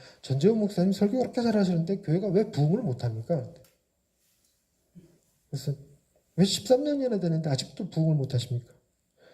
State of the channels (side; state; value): both; identical; correlation 1.00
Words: 전재훈 목사님 설교 그렇게 잘하시는데 교회가 왜 부흥을 못합니까? 그래서 왜 13년이나 되는데 아직도 부흥을 못하십니까?